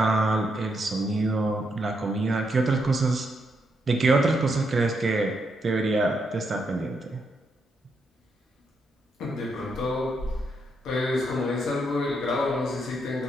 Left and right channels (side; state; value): both; normal; correlation 0.79